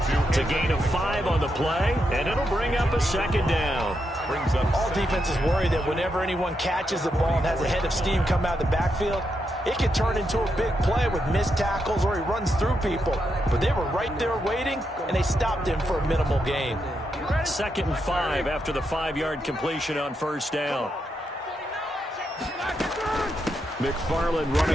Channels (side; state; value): both; normal; correlation 0.83